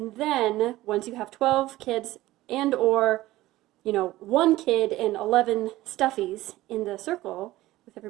then once you have 12 kids and or 1 kid and 11 stuffies in the circle with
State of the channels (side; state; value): left; quieter; 16.7 dB